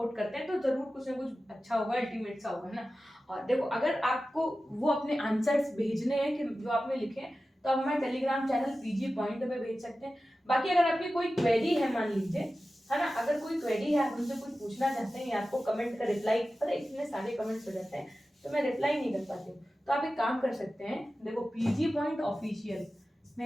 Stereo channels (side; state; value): both; normal; correlation 0.94